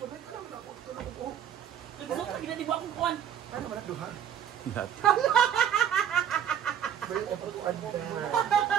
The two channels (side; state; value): left; quieter; 9.3 dB